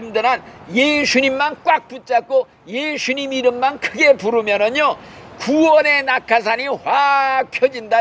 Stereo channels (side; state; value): both; identical; correlation 1.00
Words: 예수님만 꽉 붙잡고 예수님 이름만 크게 부르면은요, 구원의 낙하산이 확